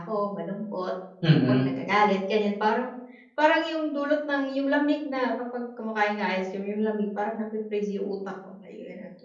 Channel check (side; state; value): both; identical; correlation 1.00